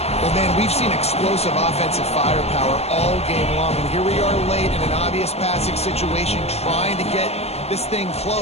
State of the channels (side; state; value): right; late; 0.30 ms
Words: Well, man, we've seen explosive offensive firepower all game long, and here we are late in an obvious passing situation trying to get this thing